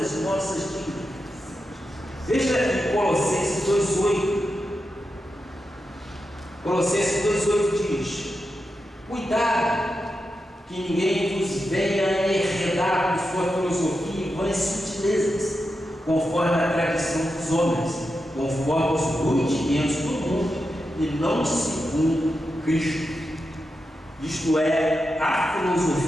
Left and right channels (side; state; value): both; normal; correlation 0.88